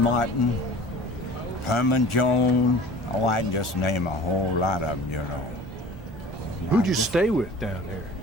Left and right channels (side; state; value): both; normal; correlation 0.44